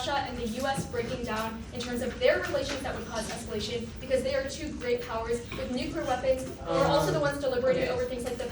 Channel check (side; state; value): both; identical; correlation 1.00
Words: and the U.S. breaking down in terms of their relations that would cause escalation because they are two great powers with nuclear weapons. We're also the ones deliberating over things like the